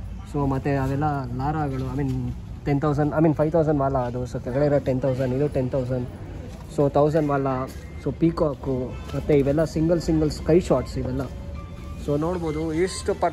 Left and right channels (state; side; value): identical; both; correlation 1.00